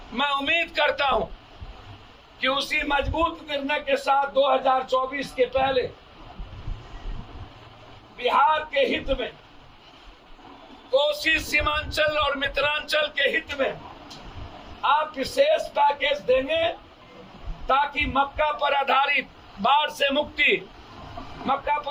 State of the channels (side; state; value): both; identical; correlation 1.00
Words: मैं उम्मीद करता हूं कि उसी मजबूत निर्णय के साथ 2024 के पहले बिहार के हित में, कोसी, सीमांचल और मिथिलांचल के हित में आप विशेष पैकेज देंगे ताकि मक्का पर आधारित बाढ़ से मुक्ति, मक्का